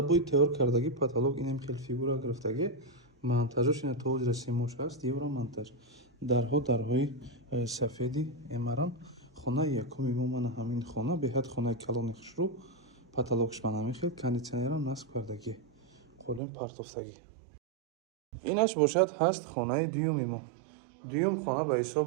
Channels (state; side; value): drops out; left; at 16.4 s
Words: тайёр кардагӣ потолок инам хел фигура гирифтагӣ. Монтажош ина то ҳозира семош аст, евро монтаж. Дарҳои сафеди эмарам. Хонаи якуми мо мана ҳамин хона, беҳад хонаи калони хушрӯ. Потолокш мана ҳамин хел, кондитсионерам насб кардагӣ. Қолин партофтагӣ. Инаш бошад ҳаст хонаи дуюми мо. Дуюм хона ба ҳисоб